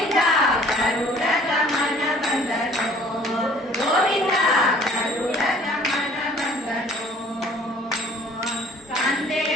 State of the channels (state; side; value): normal; both; correlation 0.53